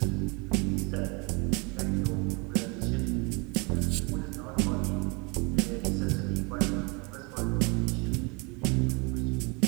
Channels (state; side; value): quieter; left; 30.3 dB